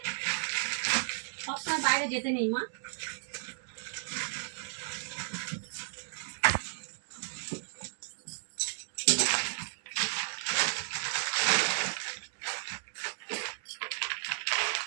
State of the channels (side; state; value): left; silent; digital silence